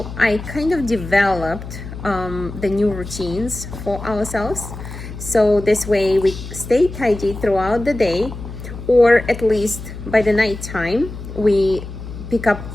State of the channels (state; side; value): noise; left; hum, 10 dB below the sound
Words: I kind of developed the new routines for ourselves. So this way we stay tidy throughout the day, or at least by the night time, we pick up